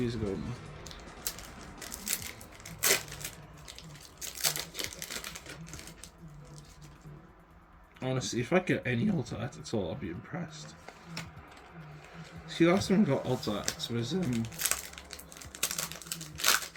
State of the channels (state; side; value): identical; both; correlation 1.00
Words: ago now. Honestly, if I get any Alta Art at all, I'll be impressed. See, last time I got Alta Arts was